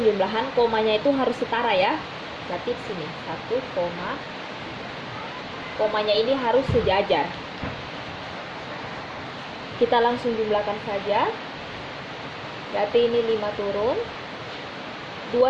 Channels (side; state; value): both; identical; correlation 1.00